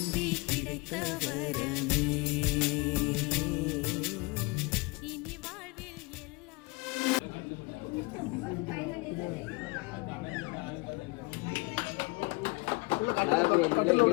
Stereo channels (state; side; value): quieter; right; 26.5 dB